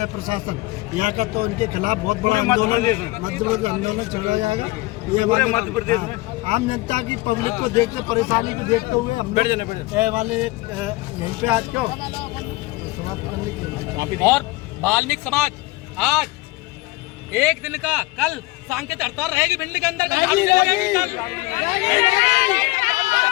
प्रशासन यहाँ का, तो उनके खिलाफ बहुत बड़ा आंदोलन चलाया जाएगा। ये पूरे मध्य प्रदेश में आम जनता की पब्लिक को देखते परेशानी को देखते हुए हम वाले यहीं पे आज क्यों समाप्त करने की। और वाल्मीकि समाज आज एक दिन का कल सांकेतिक हड़ताल रहेगी भिंडी के अंदर।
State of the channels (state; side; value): quieter; right; 20.8 dB